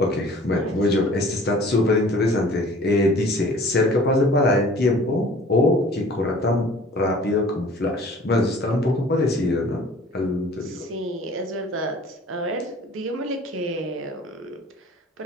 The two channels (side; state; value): both; normal; correlation 0.48